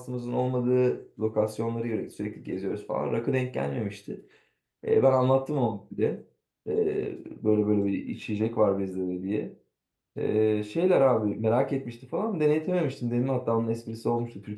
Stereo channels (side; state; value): both; identical; correlation 1.00